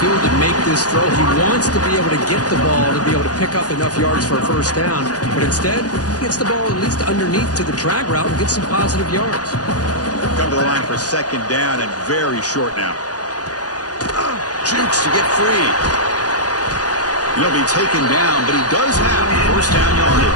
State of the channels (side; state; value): right; late; 0.68 ms